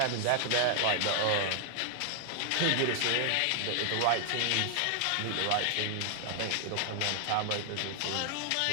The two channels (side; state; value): both; different; correlation 0.00